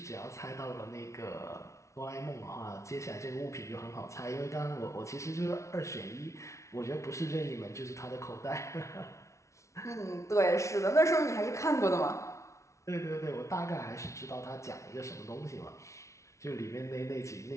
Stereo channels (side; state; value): right; late; 0.14 ms